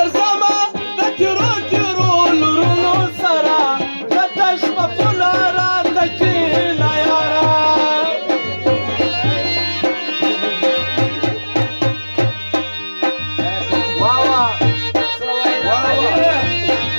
د تیرو تیرو لرونو سره د تش په پوله راته کښېنه یاره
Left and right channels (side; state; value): both; inverted; correlation -1.00